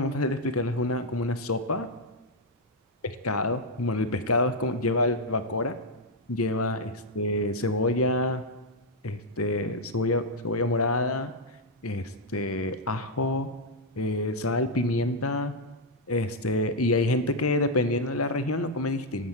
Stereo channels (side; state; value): both; normal; correlation -0.01